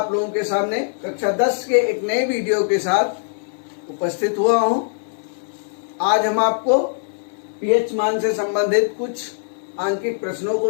लोगों के सामने कक्षा 10 के एक नए वीडियो के साथ उपस्थित हुआ हूं। आज हम आपको पीएच मान से संबंधित कुछ आंकिक प्रश्नों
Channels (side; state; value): right; silent; digital silence